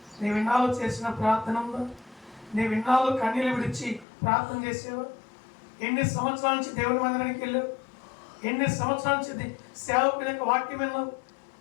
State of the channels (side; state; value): right; drops out; at 4.0 s